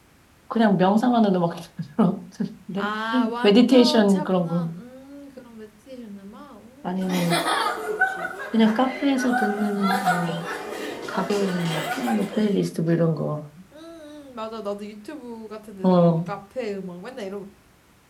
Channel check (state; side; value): identical; both; correlation 1.00